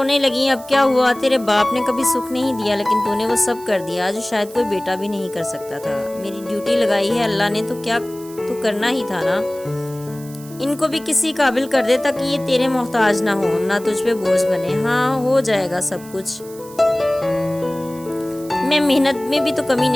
لگی۔ اب کیا ہوا؟ تیرے باپ نے کبھی سکھ نہیں دیا لیکن تو نے وہ سب کر دیا جو شاید کوئی بیٹا بھی نہیں کر سکتا تھا۔ میری ڈیوٹی لگائی ہے اللہ نے تو کیا تو کرنا ہی تھا نا۔ ان کو بھی کسی قابل کر دے تاکہ یہ تیرے محتاج نہ ہو، نہ تجھ پہ بوجھ بنے۔ ہاں ہو جائے گا سب کچھ، میں محنت میں بھی تو کمی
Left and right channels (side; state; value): right; noise; hiss, 20 dB below the sound